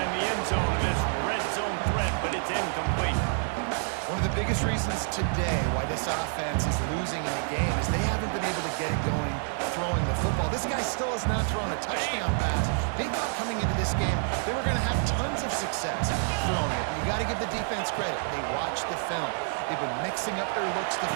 the end zone of this red zone threat, but it's incomplete. One of the biggest reasons today why this offense is losing in the game is they haven't been able to get it going throwing the football. This guy still has not thrown a touchdown pass. They thought coming into this game they were going to have tons of success throwing it. You got to give the defense credit. They watched the film. They've been mixing up their looks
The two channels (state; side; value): silent; left; 59 dB below the other